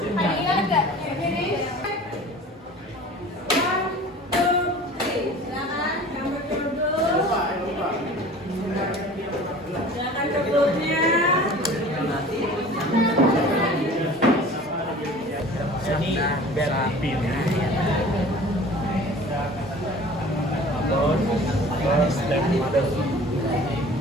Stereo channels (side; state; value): both; normal; correlation 0.43